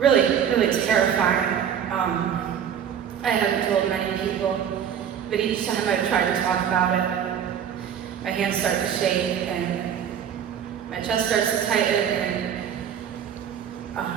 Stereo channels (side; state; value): left; quieter; 8.7 dB